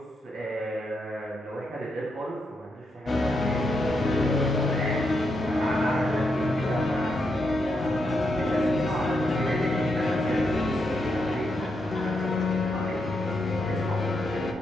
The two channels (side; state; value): both; normal; correlation 0.82